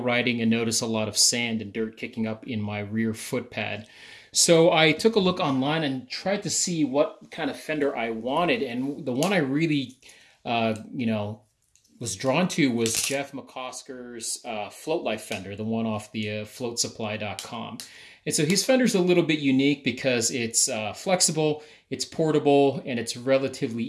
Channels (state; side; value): identical; both; correlation 1.00